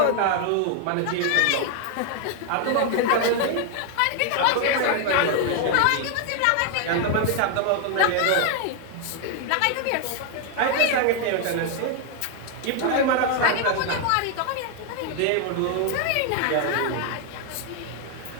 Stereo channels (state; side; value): different; both; correlation 0.00